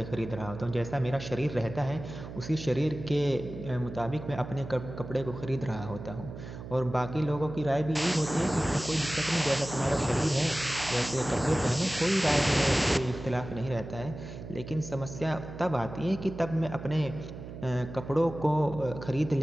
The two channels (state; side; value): noise; right; hum, 11 dB below the sound